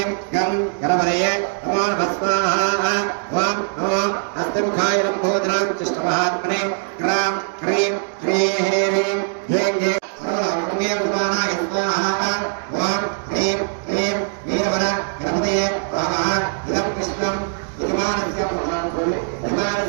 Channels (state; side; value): silent; left; digital silence